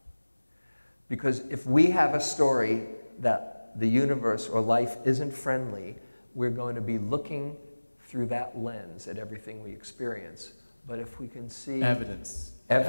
Because if we have a story that the universe or life isn't friendly, we're going to be looking through that lens at everything we experience. But if we can see evidence,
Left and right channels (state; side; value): inverted; both; correlation -1.00